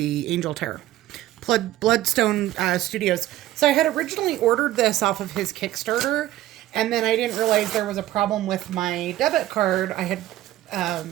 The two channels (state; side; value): quieter; left; 14.7 dB